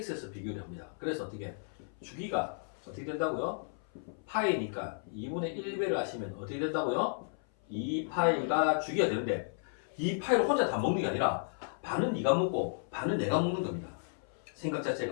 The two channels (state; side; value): silent; right; 55 dB below the other